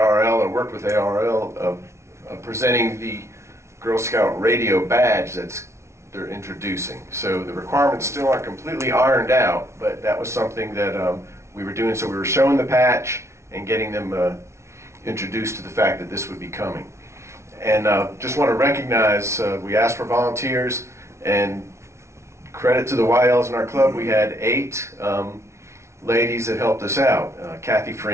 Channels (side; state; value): left; late; 0.13 ms